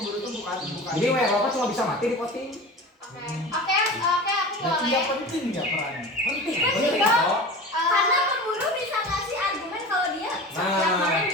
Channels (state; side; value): normal; both; correlation 0.34